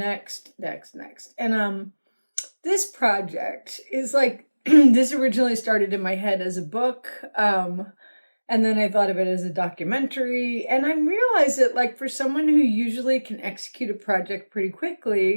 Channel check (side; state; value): both; inverted; correlation -1.00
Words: And this project is like, this originally started in my head as a book. And then I thought of it as a documentary. And I realized that, like, for someone who usually can execute a project pretty